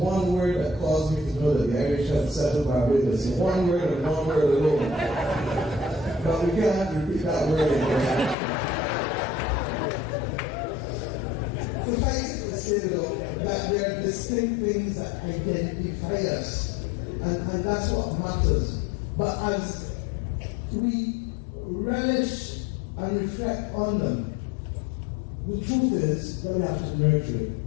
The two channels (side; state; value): right; drops out; at 8.3 s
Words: word that caused me to know that the Irish had settled Barbados. One word and one word alone. But we can't repeat that word again. Suffice it to say, though, that there are distinct things that identify us, and that's what matters. But as we relish and reflect on them, the truth is that we have to nurture it,